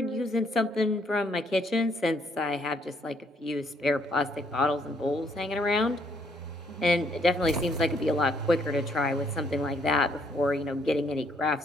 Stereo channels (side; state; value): both; normal; correlation 0.68